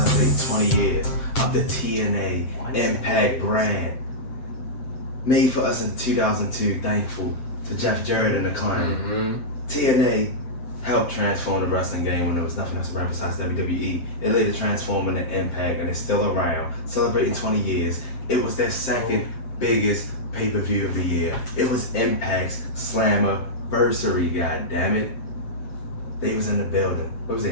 20 years of the TNA Impact brand. Made for us in 2002, thankful to Jeff Jarrett and the Clan. TNA helped transform the wrestling game when there was nothing else around besides WWE. It later transformed into Impact and it's still around, celebrating 20 years. It was their second biggest pay-per-view of the year. It was Impact's Slammiversary, goddammit. They was in the building. What was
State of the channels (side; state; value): right; late; 7.7 ms